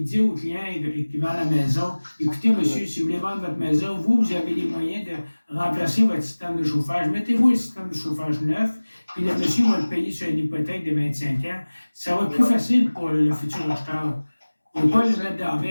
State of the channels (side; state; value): both; inverted; correlation -1.00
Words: dit au client qui vend la maison, écoutez, monsieur, si vous voulez vendre votre maison, vous avez les moyens de remplacer votre système de chauffage. Mettez-vous un système de chauffage neuf, puis le monsieur va le payer sur une hypothèque de 25 ans. Ça va être plus facile pour le futur acheteur. Il ne faut pas le mettre dans la